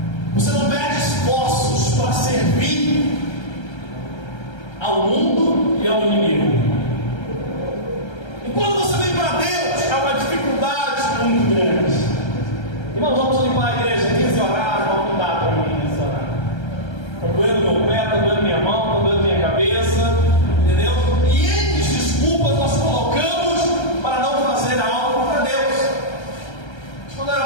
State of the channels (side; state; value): right; late; 1.3 ms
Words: você não mede esforços para servir ao mundo e ao inimigo. E quando você vem para Deus, é uma dificuldade muito grande. Irmãos, vamos limpar a igreja 15 horas, vamos mudar para mim nessa hora. Está doendo meu pé, está doendo minha mão, está doendo minha cabeça, entendeu? E N desculpas nós colocamos para não fazer algo para Deus. Quando era